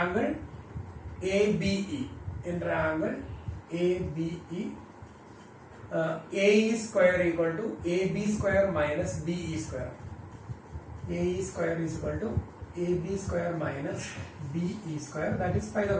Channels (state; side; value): identical; both; correlation 1.00